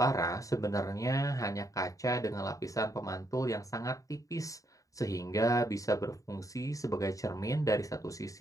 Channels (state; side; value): late; right; 0.16 ms